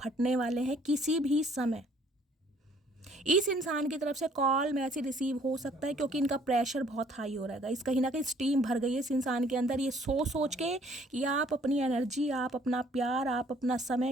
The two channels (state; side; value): normal; both; correlation 0.60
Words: वाले हैं किसी भी समय। इस इंसान की तरफ से कॉल मैसेज रिसीव हो सकता है, क्योंकि इनका प्रेशर बहुत हाई हो रहा है। इस कहीं ना कहीं स्टीम भर गई है इस इंसान के अंदर, ये सोच के कि आप अपनी एनर्जी, आप अपना प्यार, आप अपना